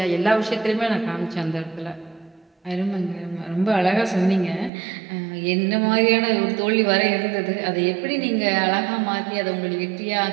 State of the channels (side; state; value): left; drops out; at 4.7 s